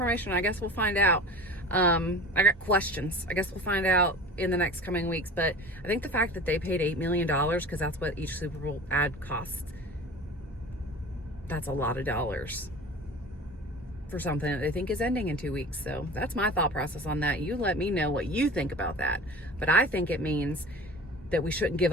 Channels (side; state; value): both; normal; correlation 0.37